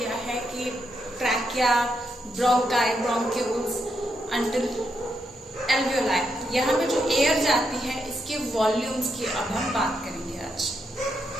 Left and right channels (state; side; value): normal; both; correlation 0.81